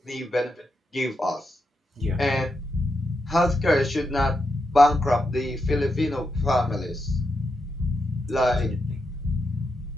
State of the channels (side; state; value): both; normal; correlation 0.85